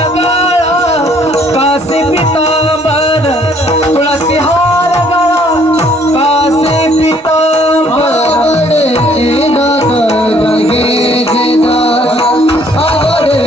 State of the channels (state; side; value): normal; both; correlation 0.62